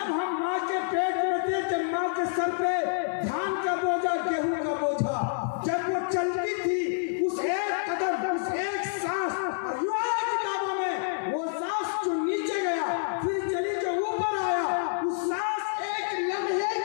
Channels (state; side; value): silent; right; 57 dB below the other